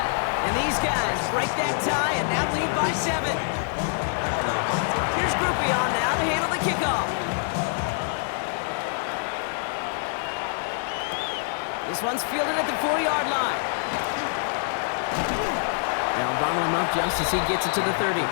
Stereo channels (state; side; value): silent; right; digital silence